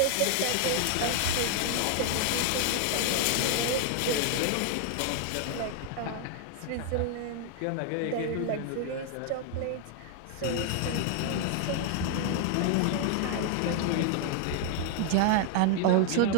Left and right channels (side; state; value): both; different; correlation 0.00